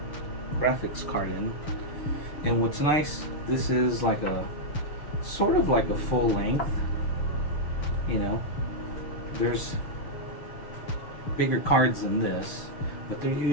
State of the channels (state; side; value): late; right; 6.7 ms